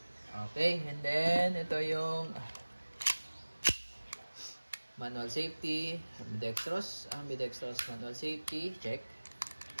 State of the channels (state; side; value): inverted; both; correlation -1.00